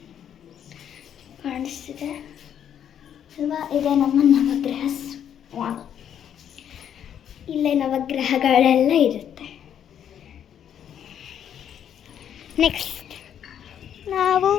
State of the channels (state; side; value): quieter; right; 9.3 dB